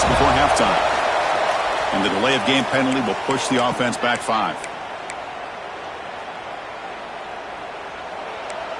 before halftime. And the delay of game penalty will push the offense back 5.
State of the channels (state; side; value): identical; both; correlation 1.00